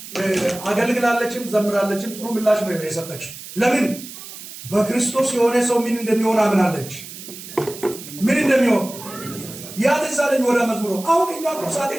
አገልግላለችም ዘምራለችም። ጥሩ ምላሽ ነው የሰጠች። ለምን? በክርስቶስ የሆነ ሰው ምን እንደሚሆን አምናለች። ምን እንደሚሆን ያ ተሳለኝ ወደ መዝሙሩ። አሁን እኛ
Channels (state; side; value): noise; right; hiss, 13 dB below the sound